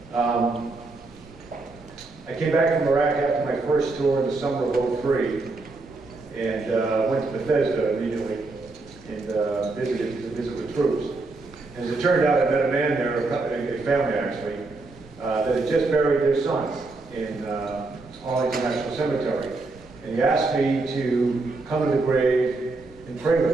I came back from Iraq after my first tour in the summer of '03 and went to Bethesda immediately and visited to visit with troops. As it turned out, I met a man there, a family actually, that had just buried their son in Arlington National Cemetery. And he asked me to come to the grave and pray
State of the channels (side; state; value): left; quieter; 3.4 dB